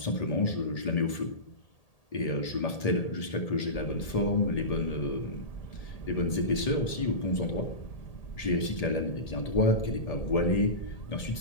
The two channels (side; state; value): right; late; 1.8 ms